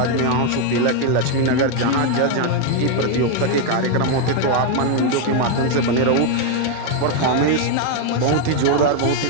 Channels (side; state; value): both; different; correlation 0.01